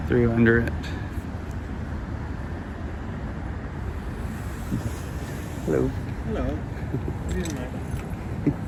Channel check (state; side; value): identical; both; correlation 1.00